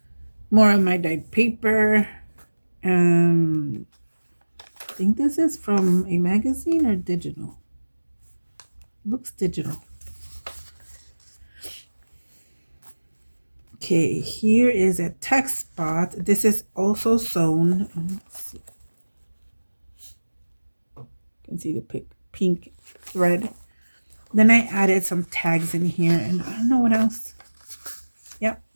More of my dyed paper. I think this is from a magazine or digital. Looks digital. Okay, here is a text spot. This is also sewn. Let's see. You can see the pink thread. Then I added some tags in here, and I don't know what else. Yep.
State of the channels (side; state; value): both; inverted; correlation -1.00